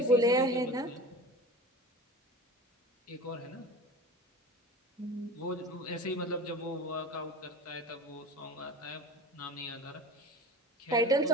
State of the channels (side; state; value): both; normal; correlation 0.34